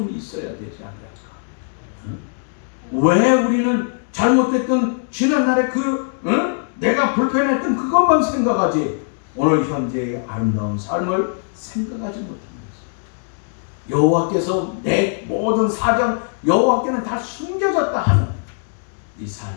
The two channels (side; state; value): right; silent; 64 dB below the other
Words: 있어야 되지 않을까? 응? 왜 우리는 잘못됐던 지난날에 내가 불편했던 그것만 생각하지 오늘 현재의 아름다운 삶을 생각하지 못한 것입니다. 여호와께서 내 모든 사정, 여호와께는 다 숨겨졌다 하는 이